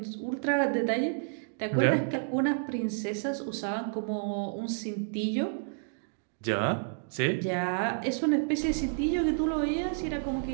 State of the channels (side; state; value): left; silent; digital silence